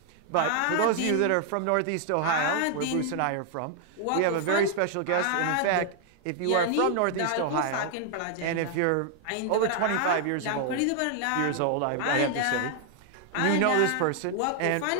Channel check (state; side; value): different; both; correlation 0.00